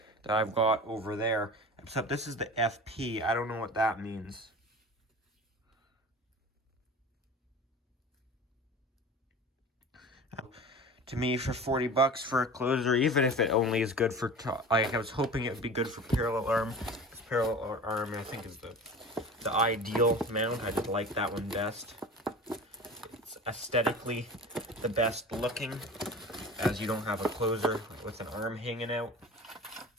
that I've got over there. Except this is the FP. I don't know what that means. To me, for 40 bucks for a closer, even if it only is good for, like, I was hoping it would be good for parallel arm. Parallel arm, I think, is the ideal mount. I just like that one best. It's aesthetically the best looking, as you don't have a closer with an arm hanging out.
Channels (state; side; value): normal; both; correlation 0.36